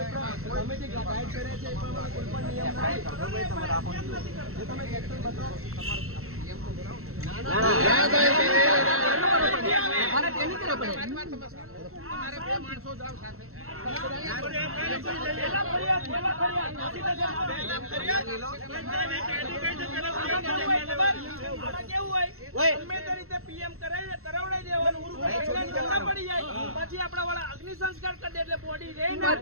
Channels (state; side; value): late; left; 0.63 ms